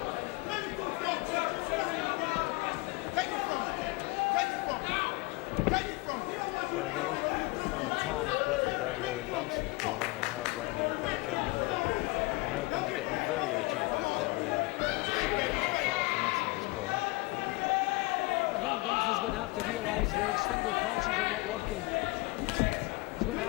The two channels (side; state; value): right; quieter; 23.0 dB